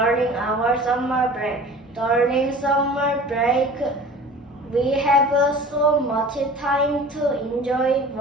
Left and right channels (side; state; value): both; normal; correlation 0.42